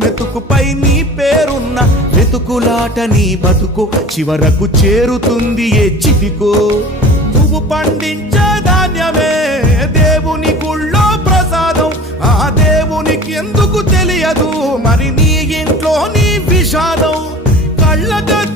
మెతుకుపై నీ పేరున్న వెతుకులాట నీ బతుకు చివరకు చేరుతుంది ఏ చితికో నువ్వు పండించే ధాన్యమే దేవుని గుళ్ళో ప్రసాదం ఆ దేవునికి ఎందుకు తెలియదు మరి నీ ఇంట్లో నీ విషాదం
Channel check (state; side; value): normal; both; correlation 0.40